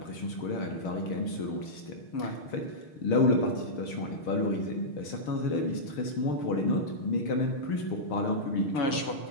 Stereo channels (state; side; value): late; right; 6.5 ms